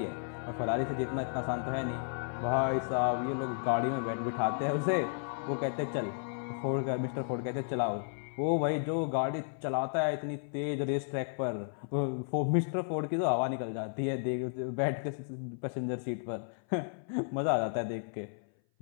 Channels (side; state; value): right; silent; 56 dB below the other